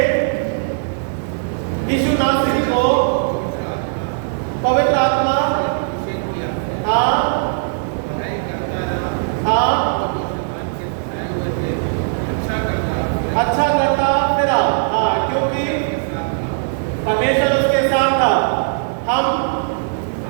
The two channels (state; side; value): silent; left; digital silence